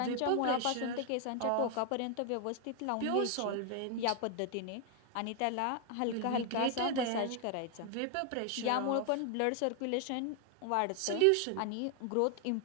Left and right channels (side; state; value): both; different; correlation 0.00